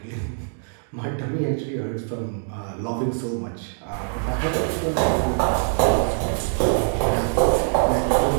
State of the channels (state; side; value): silent; left; digital silence